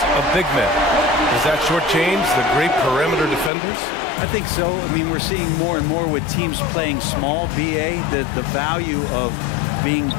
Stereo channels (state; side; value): drops out; right; at 3.5 s